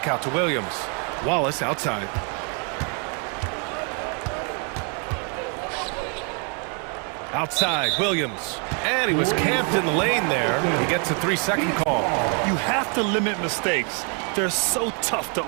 out to Williams. Wallace outside. Outside, Williams. And he was camped in the lane there. He gets a 3-second call. You have to limit mistakes. They're so tough to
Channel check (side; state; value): left; quieter; 38.5 dB